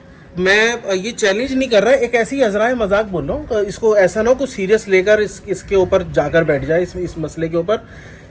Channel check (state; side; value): identical; both; correlation 1.00